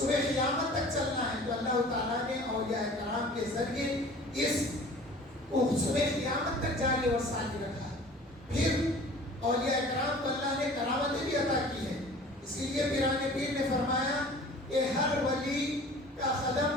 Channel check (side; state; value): both; normal; correlation 0.45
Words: قیامت تک چلنا ہے، تو اللہ تعالیٰ نے اولیاء کرام کے ذریعے اس کو صبح قیامت تک جاری اور ساری رکھا ہے۔ پھر اولیاء کرام کو اللہ نے کرامتیں بھی عطا کی ہے، اسی لیے پیران پیر نے فرمایا کہ ہر ولی کا